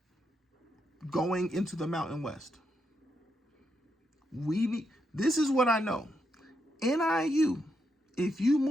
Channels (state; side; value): normal; both; correlation 0.81